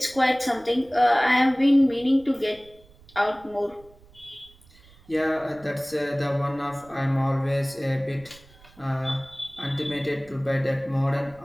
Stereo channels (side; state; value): right; noise; rumble, 26 dB below the sound